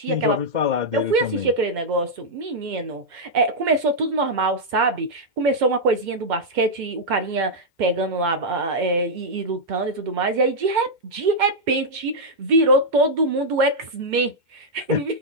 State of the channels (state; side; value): late; left; 2.1 ms